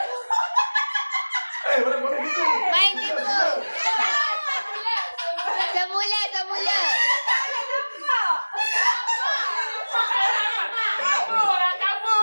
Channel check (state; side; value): inverted; both; correlation -1.00